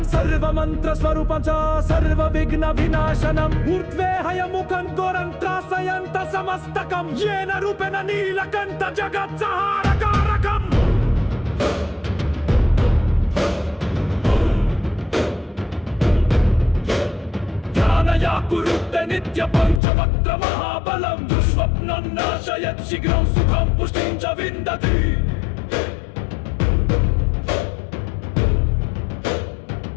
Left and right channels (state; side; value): drops out; right; at 19.8 s